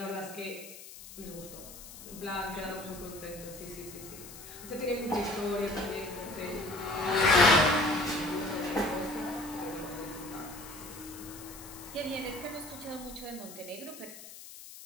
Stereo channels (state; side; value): noise; left; hiss, 14 dB below the sound